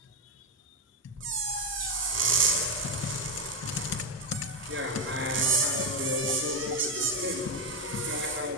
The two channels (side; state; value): both; normal; correlation 0.05